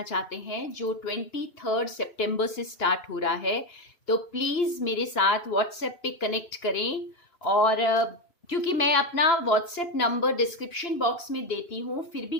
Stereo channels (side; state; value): right; late; 2.9 ms